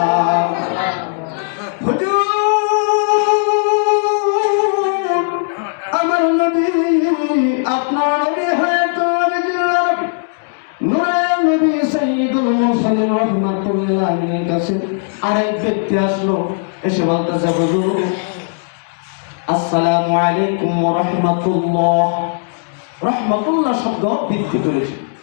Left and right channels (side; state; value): right; silent; digital silence